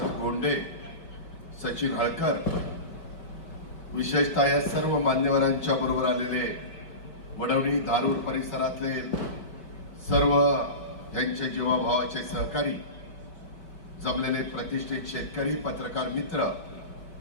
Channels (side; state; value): right; late; 5.1 ms